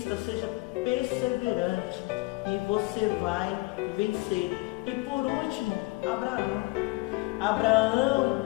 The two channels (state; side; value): quieter; right; 22.9 dB